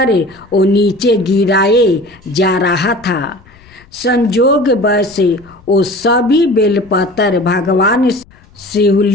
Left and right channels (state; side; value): noise; left; rumble, 27 dB below the sound